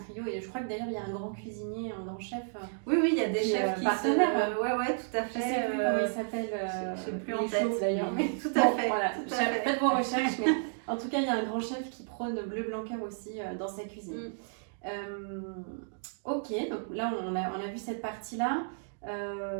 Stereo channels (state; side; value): silent; left; digital silence